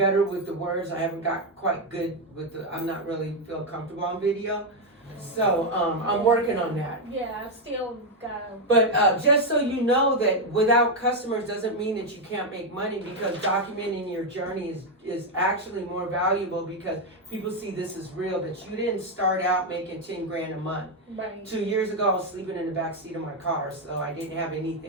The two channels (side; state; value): both; normal; correlation 0.04